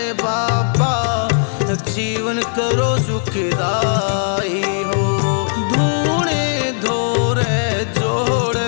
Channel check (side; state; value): right; silent; digital silence